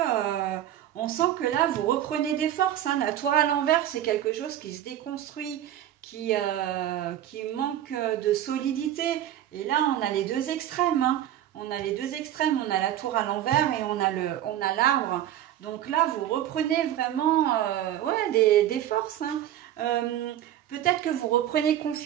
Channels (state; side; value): quieter; left; 11.9 dB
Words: là, vous reprenez des forces. Hein. La tour à l'envers, c'est quelque chose qui se déconstruit, qui manque de solidité. Et là, on a les deux extrêmes. Hein. On a les deux extrêmes. On a la tour à l'envers et on a l'arbre. Donc là, vous reprenez vraiment des forces. Hein. Peut-être que vous reprenez